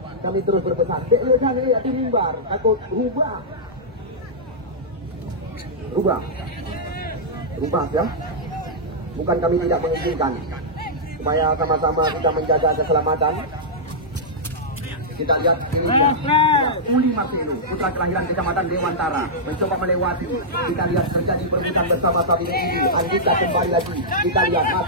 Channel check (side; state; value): both; normal; correlation -0.11